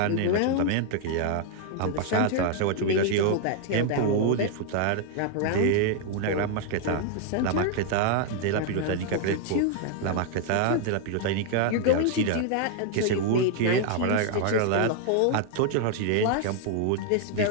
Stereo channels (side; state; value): both; different; correlation 0.00